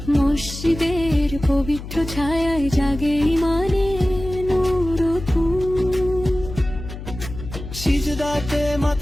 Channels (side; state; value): left; noise; hum, 11 dB below the sound